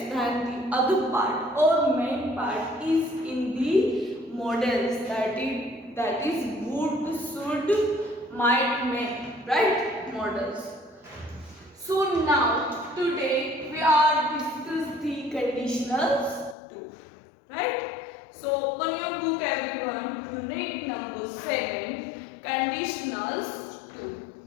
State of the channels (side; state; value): right; drops out; at 16.6 s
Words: then the other part or main part is in the models, that is would, should, might, may, right? Models. So now today we are discuss the conditionals too, right? So open your book everyone, unit number 7, conditionals 2.